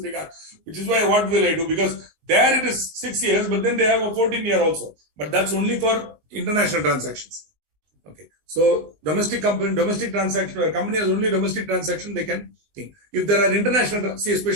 regard, which is why what will I do? Because there it is 6 years, but then they have a 14-year also. But that's only for international transactions. Okay. So domestic transaction, where a company has only domestic transaction, they can think. If there are international, see,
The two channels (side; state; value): left; late; 19 ms